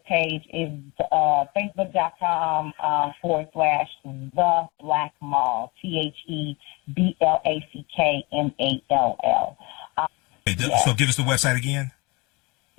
page is facebook.com /The Black Mall, TheBlackMall. So give us the website again.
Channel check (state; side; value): quieter; right; 26.2 dB